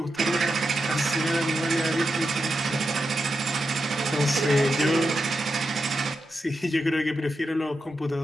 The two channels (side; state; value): both; normal; correlation 0.88